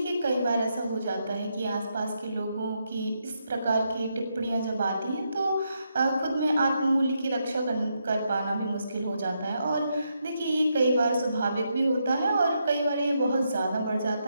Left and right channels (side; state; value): both; inverted; correlation -0.81